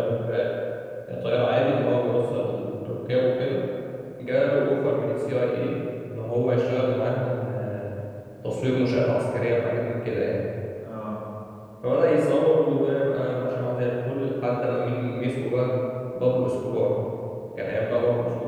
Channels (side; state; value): both; identical; correlation 1.00